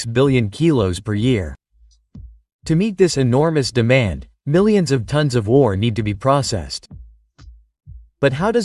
billion kilos per year. To meet this enormous demand, millions of tons of ore need to be processed. But how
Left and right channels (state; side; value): identical; both; correlation 1.00